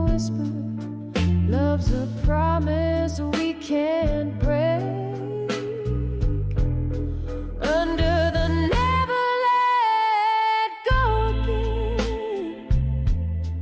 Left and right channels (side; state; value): both; identical; correlation 1.00